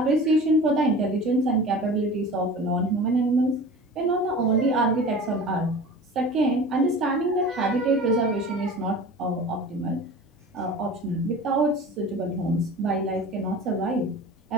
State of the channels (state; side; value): normal; both; correlation 0.38